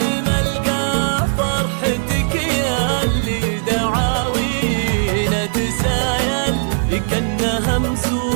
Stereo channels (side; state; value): left; silent; digital silence